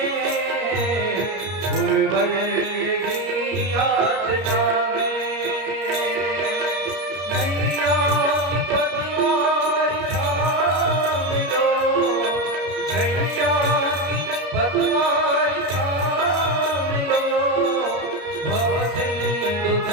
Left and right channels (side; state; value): left; late; 32 ms